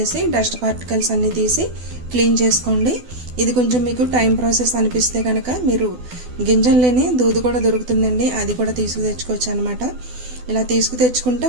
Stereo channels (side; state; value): left; late; 12 ms